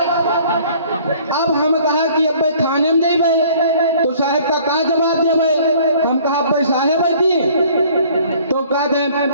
अब हम कहा कि अब भाई थाने में जाई भाई तो साहब का जवाब दे भाई हम कहा भाई साहब दी तो कहते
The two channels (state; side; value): inverted; both; correlation -0.54